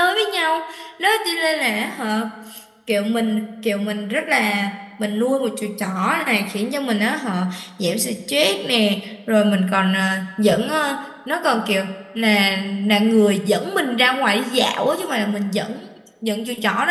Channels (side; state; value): both; identical; correlation 1.00